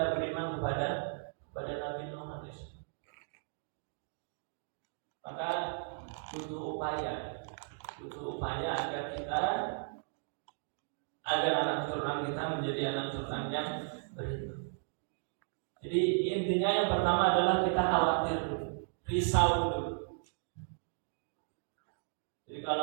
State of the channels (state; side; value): silent; left; digital silence